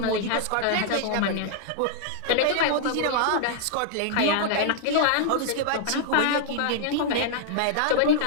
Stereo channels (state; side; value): different; both; correlation -0.01